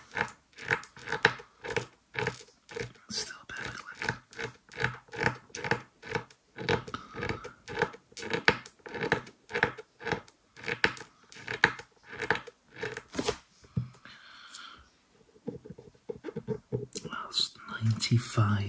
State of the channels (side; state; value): both; identical; correlation 1.00